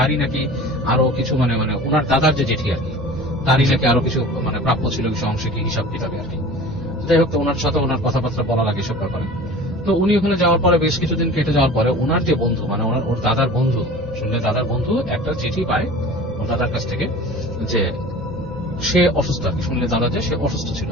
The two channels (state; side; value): normal; both; correlation 0.40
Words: নাকি আরো কিছু মানে ওনার দাদার যে জেঠি আর কি, তারই নাকি আরো কিছু মানে প্রাপ্য ছিল কিছু অংশে কি হিসাব কিতাবে আর কি। যাই হোক, ওনার সাথে ওনার কথাবার্তা বলা লাগে সব ব্যাপারে। তো উনি ওখানে যাওয়ার পরে বেশ কিছুদিন কেটে যাওয়ার পরে ওনার যে বন্ধু, মানে ওর দাদার বন্ধু, শুনলে দাদার বন্ধু একটা চিঠি পায় ওর দাদার কাছ থেকে যে সে অসুস্থ আর কি। শুনলে দাদা যে সে অসুস্থ ছিল,